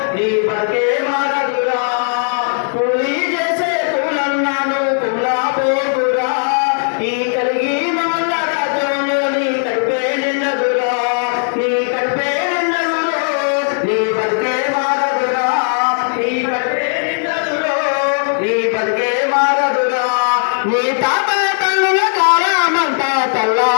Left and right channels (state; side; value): silent; right; 58 dB below the other